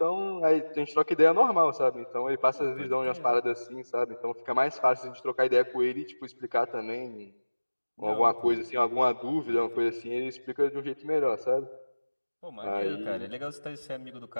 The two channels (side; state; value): both; inverted; correlation -1.00